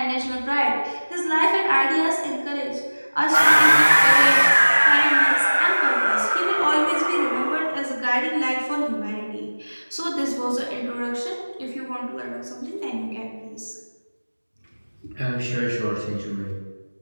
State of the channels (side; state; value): both; inverted; correlation -1.00